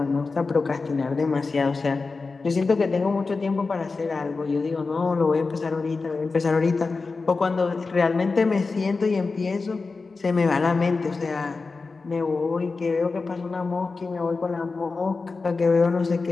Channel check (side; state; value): right; quieter; 4.1 dB